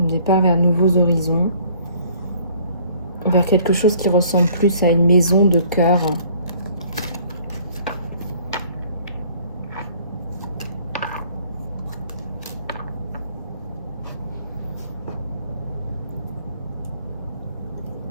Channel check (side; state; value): both; inverted; correlation -0.57